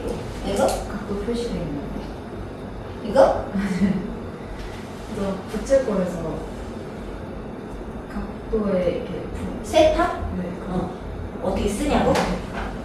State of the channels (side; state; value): both; identical; correlation 1.00